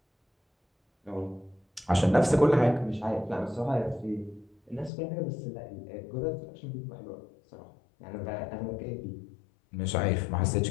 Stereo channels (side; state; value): right; drops out; at 4.9 s